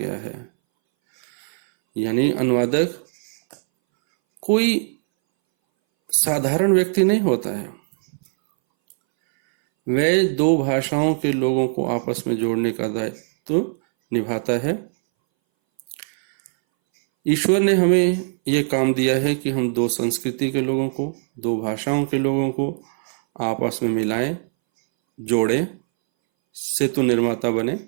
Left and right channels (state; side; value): silent; left; 62 dB below the other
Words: है। यानी अनुवादक कोई साधारण व्यक्ति नहीं होता है, वह 2 भाषाओं के लोगों को आपस में जोड़ने का दायित्व निभाता है। ईश्वर ने हमें यह काम दिया है कि हम 2 संस्कृति के लोगों को, 2 भाषाओं के लोगों को आपस में मिलाएं, जोड़ें, सेतु निर्माता बने।